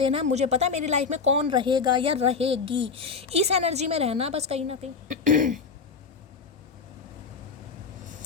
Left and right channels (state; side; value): quieter; right; 5.1 dB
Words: है, मुझे पता है मेरी लाइफ में कौन रहेगा या रहेगी। इस एनर्जी में रहना बस कहीं ना कहीं